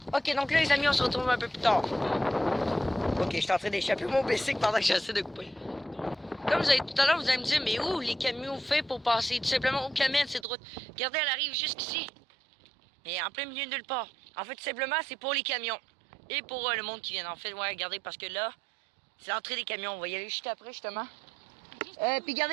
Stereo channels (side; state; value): left; drops out; at 10.5 s